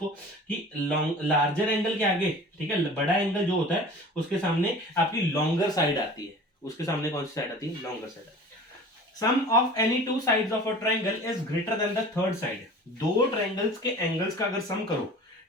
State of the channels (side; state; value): both; normal; correlation 0.41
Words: कि लार्जर एंगल के आगे, ठीक है, बड़ा एंगल जो होता है उसके सामने आपकी लॉन्गर साइड आती है, उसके सामने कौन सी साइड आती है, लॉन्गर साइड आती है। Sum of any two sides of a triangle is greater than the third side, दो ट्रायंगल्स के एंगल्स का अगर सम करो,